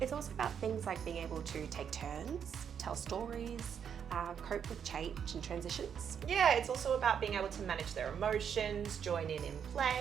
It's also about things like being able to take turns, tell stories, cope with change and transitions. Yeah, it's also about being able to manage their emotions, join in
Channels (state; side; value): quieter; left; 7.8 dB